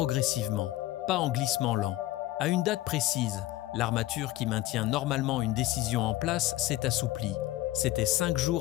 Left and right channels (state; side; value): quieter; right; 16.2 dB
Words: pas en glissement lent. À une date précise, L'armature qui maintient normalement une décision en place s'est assouplie. C'était 5